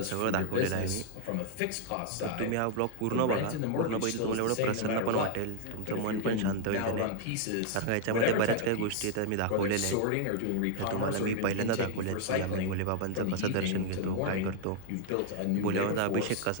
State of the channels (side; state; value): both; different; correlation 0.00